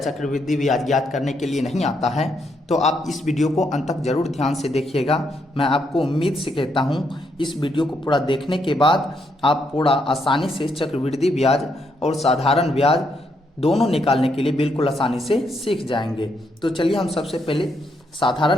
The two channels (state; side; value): normal; both; correlation 0.76